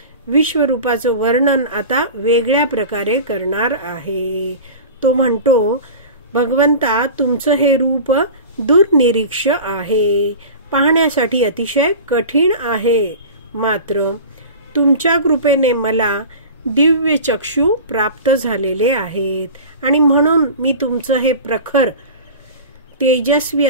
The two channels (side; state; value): both; inverted; correlation -0.35